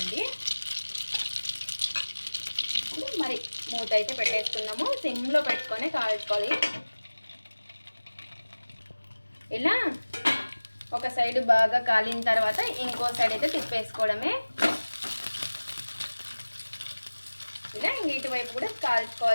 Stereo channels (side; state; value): both; inverted; correlation -1.00